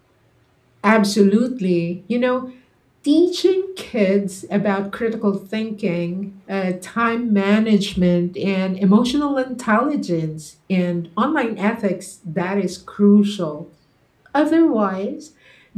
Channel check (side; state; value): both; identical; correlation 1.00